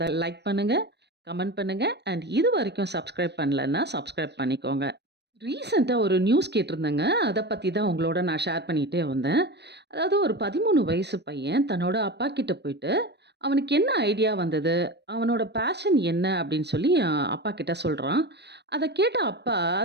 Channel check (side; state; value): left; late; 0.49 ms